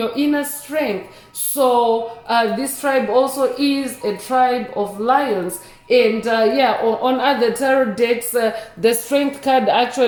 inner strength. So this tribe also is a tribe of lions. And on other tarot decks, the strength card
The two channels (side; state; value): both; identical; correlation 1.00